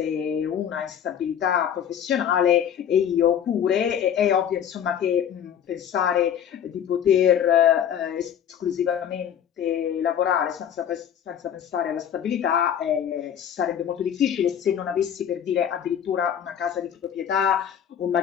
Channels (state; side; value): quieter; right; 9.0 dB